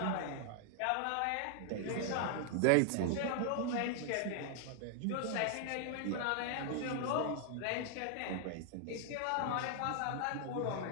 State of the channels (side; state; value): both; different; correlation 0.00